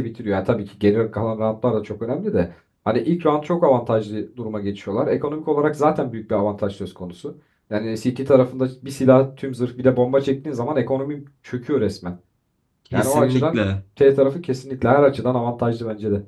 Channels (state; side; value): identical; both; correlation 1.00